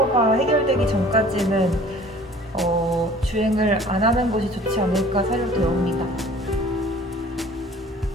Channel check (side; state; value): both; normal; correlation 0.49